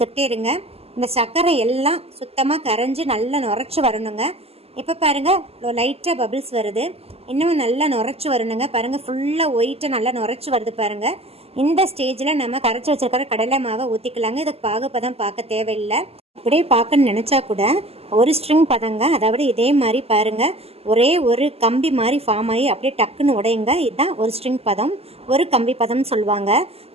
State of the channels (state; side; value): late; left; 0.29 ms